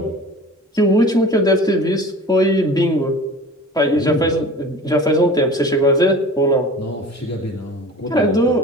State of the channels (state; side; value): normal; both; correlation 0.40